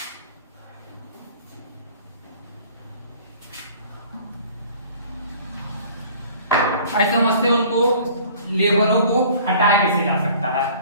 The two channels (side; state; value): both; inverted; correlation -0.50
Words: ऐसे समझते हैं उनको लेबरों को हटाया कैसे जा सकता है।